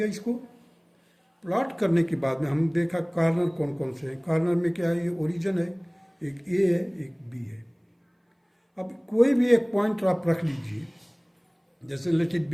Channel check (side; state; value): both; identical; correlation 1.00